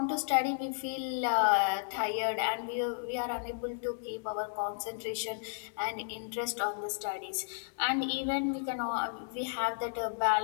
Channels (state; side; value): silent; right; digital silence